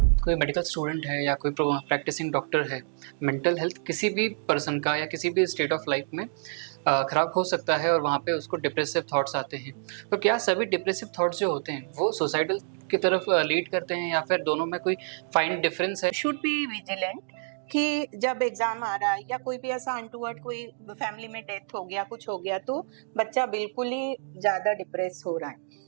कोई मेडिकल स्टूडेंट है या कोई प्रैक्टिसिंग डॉक्टर है, मेंटल हेल्थ किसी भी पर्सन का या किसी भी स्टेट ऑफ लाइफ में ख़राब हो सकता है और वहाँ पे उसको डिप्रेसिव थॉट्स आते हैं। तो क्या सभी डिप्रेसिव थॉट्स जो होते हैं वो सुसाइडल की तरफ लीड करते हैं या फिर दोनों में कोई फाइन डिफरेंस है? शुड बी विजिलेंट कि जब एग्जाम आ रहा है या कोई भी ऐसा अनटूवर्ड कोई फैमिली में डेथ हो गया, कुछ हो गया, तो बच्चा बिल्कुल ही ज्यादा डिप्रेस हो रहा है।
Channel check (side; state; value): left; silent; digital silence